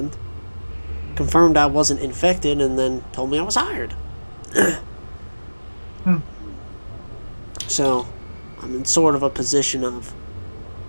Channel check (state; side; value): inverted; both; correlation -1.00